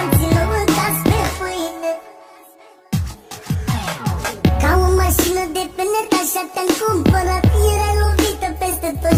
și nu mâncați pe pâine. Ca o mașină de penet așa te-am cumpărat, erai lovită peste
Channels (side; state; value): both; identical; correlation 1.00